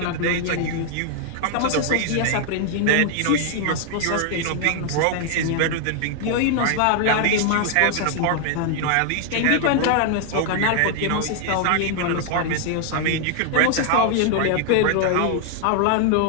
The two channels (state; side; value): different; both; correlation 0.00